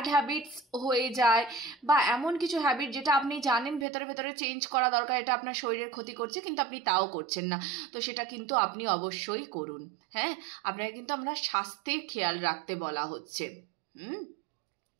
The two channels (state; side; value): drops out; left; at 3.9 s